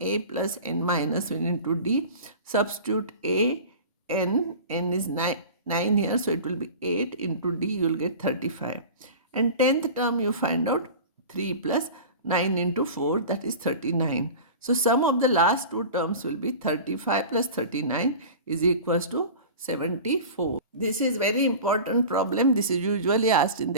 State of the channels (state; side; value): inverted; both; correlation -0.36